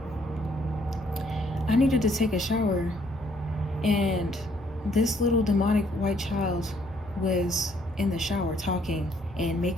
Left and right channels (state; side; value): normal; both; correlation 0.67